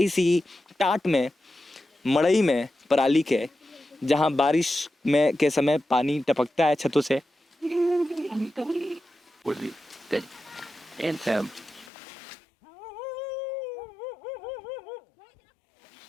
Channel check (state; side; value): drops out; right; at 11.9 s